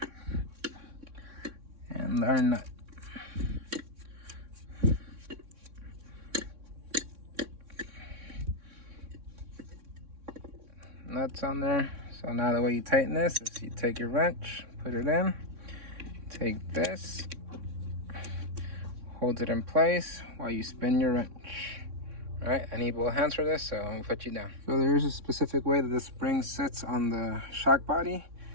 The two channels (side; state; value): left; late; 3.6 ms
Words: and our nut. Nuts on there. So now the way you tighten this is you take your wrench, put it in, take this, hold it in place while you spin your wrench. All right, I need both hands for this, so I'm gonna put you down. So there's a specific way that the spring sits on the shock body,